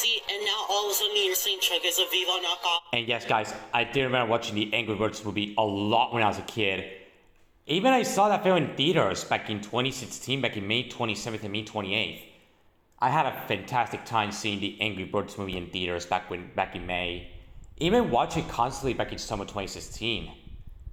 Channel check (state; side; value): identical; both; correlation 1.00